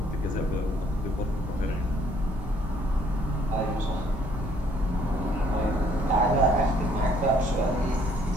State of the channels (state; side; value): normal; both; correlation 0.63